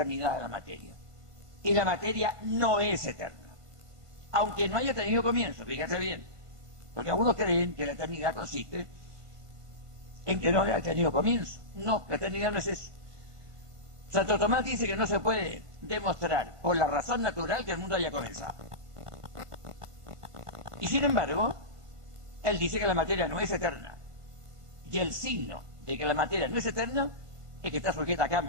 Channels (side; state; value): left; late; 1.5 ms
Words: de la materia. Y la materia no es eterna, aunque no haya tenido comienzo, fíjate bien, porque algunos creen que la eternidad consiste en que no haya tenido comienzo. No, la eternidad no es eso. Santo Tomás dice que no se puede demostrar por la razón natural que el mundo haya comenzado. Y sin embargo, él dice que la materia no es eterna. Y el signo de que la materia no es eterna es que está sujeta a